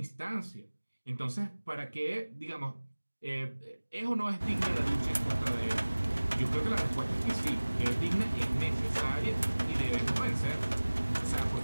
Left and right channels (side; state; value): both; inverted; correlation -1.00